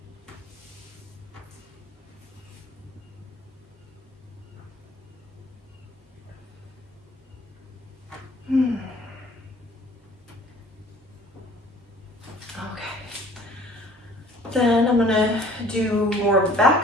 Okay. Then I'm gonna do more of the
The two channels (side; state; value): both; normal; correlation 0.52